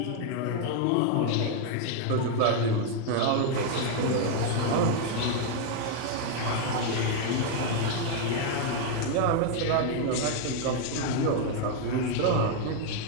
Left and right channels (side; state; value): both; different; correlation 0.01